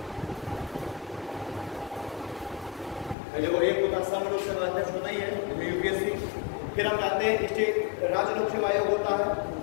देखो एक होता संघ लोक सेवा अध्यक्ष होता ही है यूपीएससी, फिर हम जानते हैं स्टेट राज्य लोक सेवा आयोग होता है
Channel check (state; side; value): drops out; right; at 3.2 s